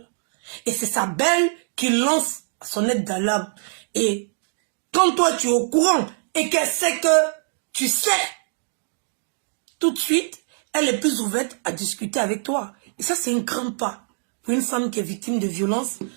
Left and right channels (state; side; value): silent; left; digital silence